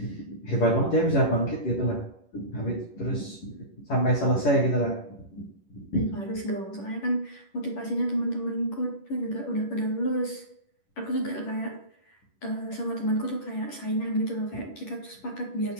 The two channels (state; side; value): late; right; 10 ms